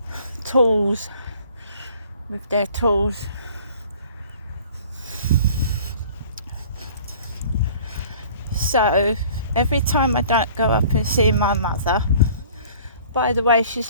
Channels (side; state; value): both; inverted; correlation -0.51